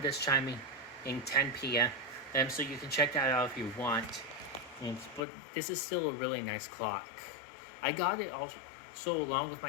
this chiming in 10 p.m. So you can check that out if you want. But this is still a really nice clock. I got it also along with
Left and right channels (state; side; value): drops out; right; at 5.2 s